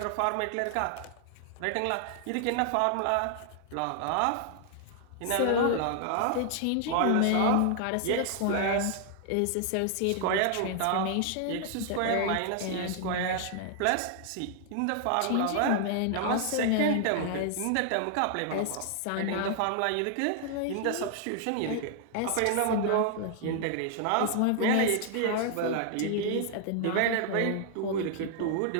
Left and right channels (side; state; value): both; different; correlation 0.00